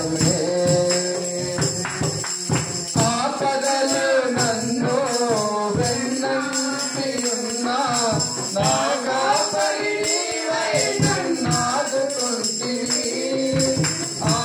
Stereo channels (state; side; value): identical; both; correlation 1.00